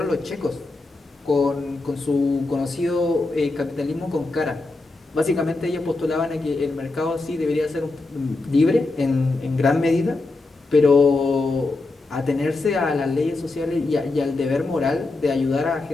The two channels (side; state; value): right; quieter; 3.3 dB